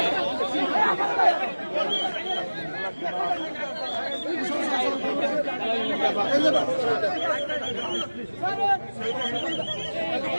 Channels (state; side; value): inverted; both; correlation -1.00